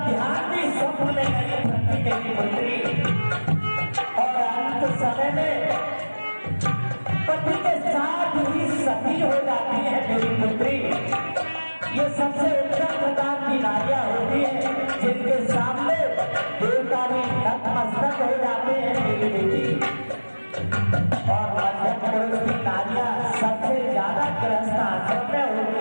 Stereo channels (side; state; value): both; inverted; correlation -1.00